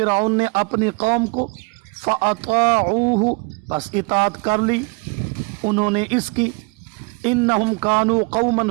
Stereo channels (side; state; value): left; quieter; 30.5 dB